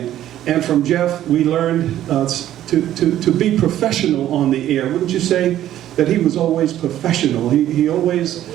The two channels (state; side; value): quieter; left; 12.4 dB